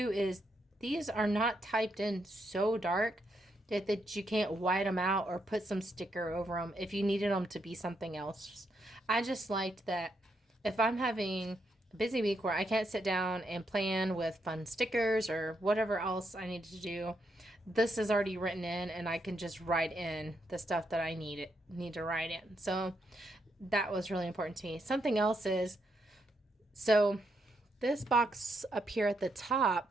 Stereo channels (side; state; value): both; normal; correlation 0.79